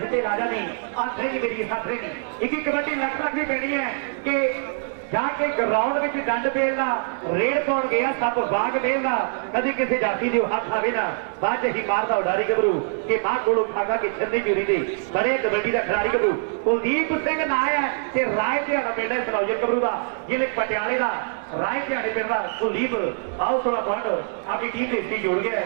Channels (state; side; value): silent; left; digital silence